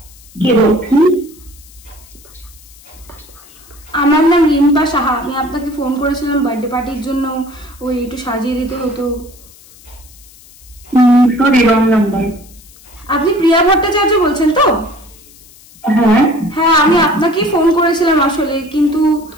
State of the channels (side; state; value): left; noise; hiss, 24 dB below the sound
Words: কে বলছেন? আমার নাম রিম্পা সাহা। আমি আপনাকে ফোন করেছিলাম বার্থডে পার্টির জন্য, ওই একটু সাজিয়ে দিতে হতো। Sorry, wrong number. আপনি প্রিয়া ভট্টাচার্য বলছেন তো? হ্যাঁ হ্যাঁ, আমি আপনাকেই ফোন করেছিলাম আসলে, কিন্তু